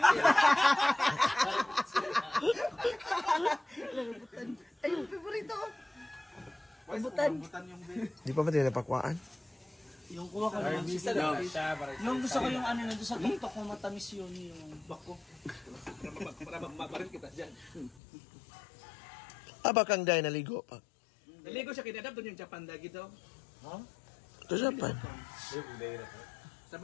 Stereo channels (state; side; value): drops out; right; at 18.0 s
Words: Ay, yung favorito. Rambutan yung bed. Di pa ba tayo napakwaan? Yung kuha ko naman si yung gusto ko yung ano na doon sa tuktok ko matamis yun yung bako. Para mabarin kita dyan. Abakang day naligo pa. Naligo siya kinadap doon yung Japan lagi daw. Sa Japan.